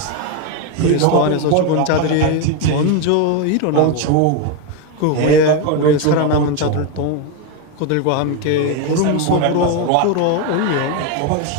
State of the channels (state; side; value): different; both; correlation 0.02